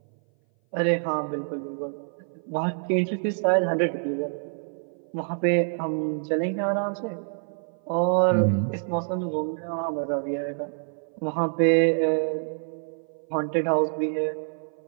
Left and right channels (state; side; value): silent; left; 57 dB below the other